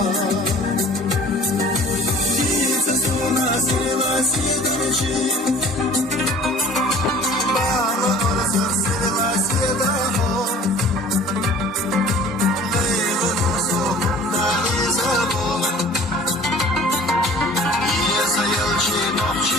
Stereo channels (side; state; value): both; normal; correlation 0.47